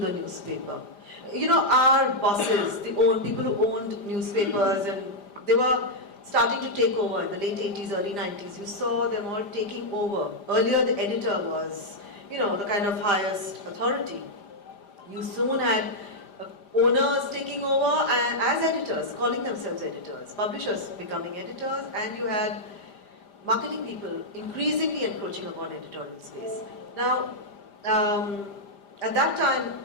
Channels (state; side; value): late; right; 5.0 ms